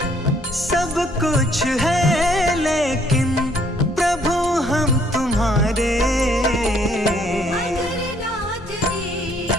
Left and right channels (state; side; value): normal; both; correlation 0.65